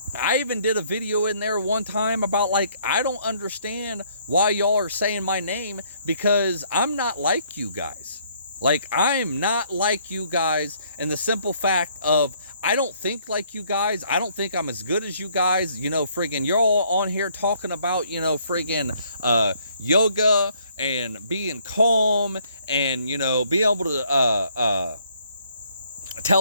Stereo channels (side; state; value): both; inverted; correlation -0.65